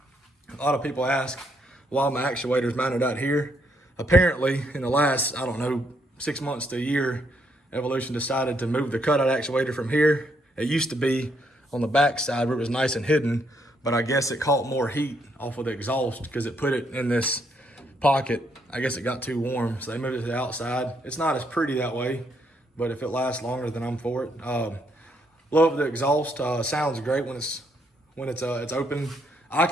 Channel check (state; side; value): normal; both; correlation 0.74